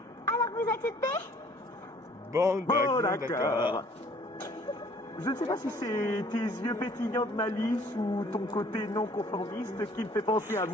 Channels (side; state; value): both; normal; correlation 0.57